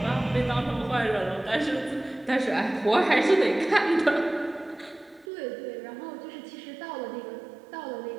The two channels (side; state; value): left; drops out; at 5.2 s